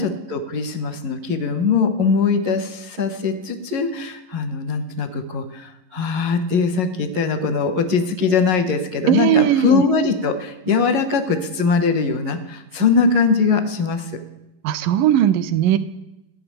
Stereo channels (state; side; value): late; left; 11 ms